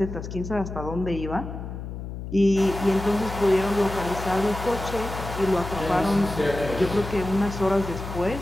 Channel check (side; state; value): left; noise; hum, 8 dB below the sound